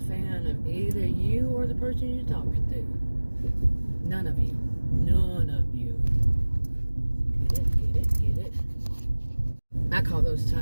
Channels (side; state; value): both; inverted; correlation -1.00